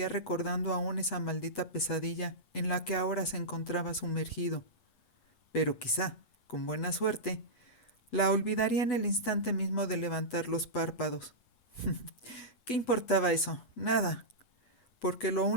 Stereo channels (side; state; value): right; late; 8.1 ms